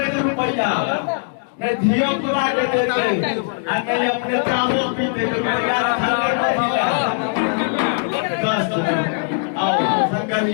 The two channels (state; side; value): silent; right; digital silence